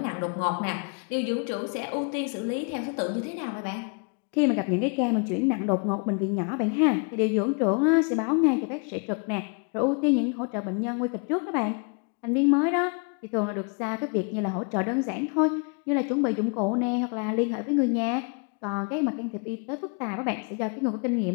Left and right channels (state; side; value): quieter; right; 37.6 dB